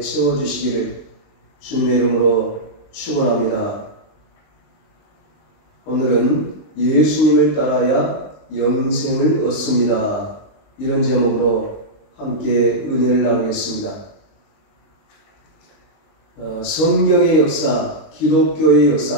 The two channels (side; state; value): right; late; 19 ms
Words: 채워주시기를 주님의 이름으로 축원합니다. 오늘은 예수님을 따라야 영생을 얻습니다. 이런 제목으로 함께 은혜를 나누겠습니다. 성경의 역사, 기독교의